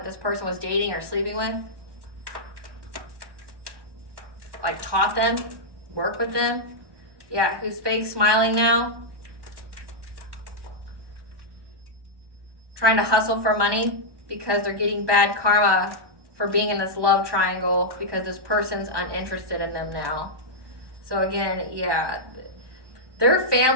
this person was dating or sleeping with. Like, taught them, worked with them. Yeah, who's fake smiling now. Trying to hustle for money because they're getting bad karma for being in this love triangle because this person's uninterested in them now. So again, yeah, their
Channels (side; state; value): left; late; 1.2 ms